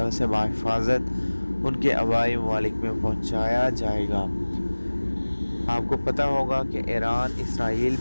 سے بحفاظت ان کے آبائی ممالک میں پہنچایا جائے گا۔ آپ کو پتہ ہوگا کہ ایران اسرائیل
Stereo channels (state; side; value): inverted; both; correlation -1.00